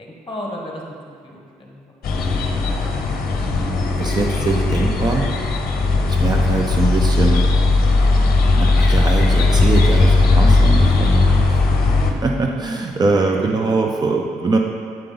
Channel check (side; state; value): both; normal; correlation 0.84